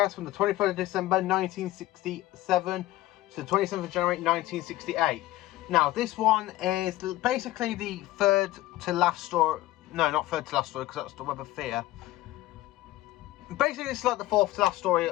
from the 23rd of December 1967 to the 27th of January 1968. Now this one is basically the third to last story. No, not third to last story, because that's the Web of Fear. Basically, it's like the fourth to last story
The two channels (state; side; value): quieter; right; 16.5 dB